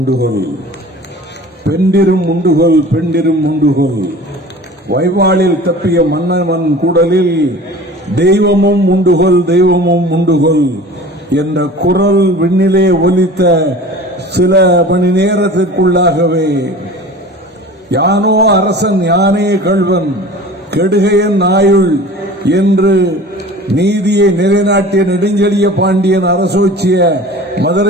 பெண்டிரும் உண்டுகொள் பெண்டிரும் உண்டுகொள், வைவாளில் தப்பிய மன்னவன் கூடலில் தெய்வமும் உண்டுகொள் தெய்வமும் உண்டுகொள் என்ற குரல் விண்ணிலே ஒலித்த சில மணி நேரத்திற்குள்ளாகவே யானோ அரசன் யானே கள்வன் கெடுகையன் ஆயுள் என்று நீதியை நிலைநாட்டிய நெடுஞ்செழிய பாண்டியன் அரசோச்சிய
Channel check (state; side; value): normal; both; correlation 0.40